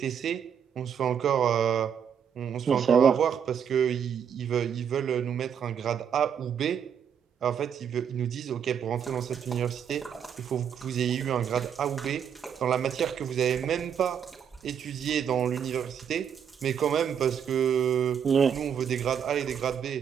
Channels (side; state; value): left; quieter; 8.0 dB